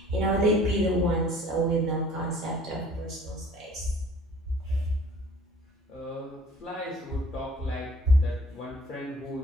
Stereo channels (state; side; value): normal; both; correlation 0.51